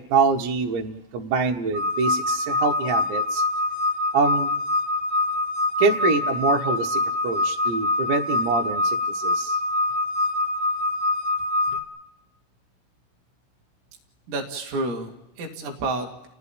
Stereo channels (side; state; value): left; late; 17 ms